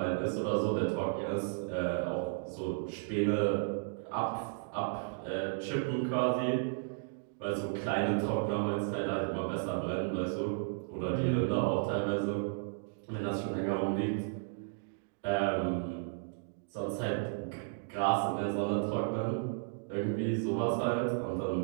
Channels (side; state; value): left; silent; digital silence